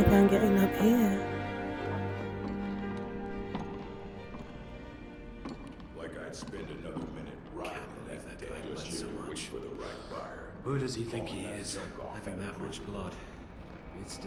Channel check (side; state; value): both; identical; correlation 1.00